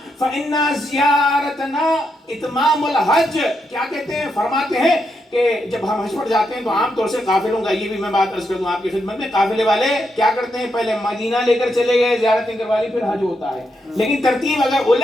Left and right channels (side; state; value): both; normal; correlation 0.82